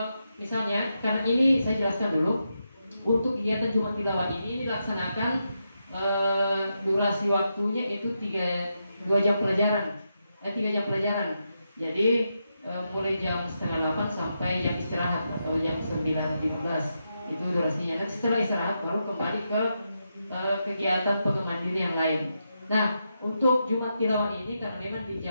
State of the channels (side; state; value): both; inverted; correlation -0.85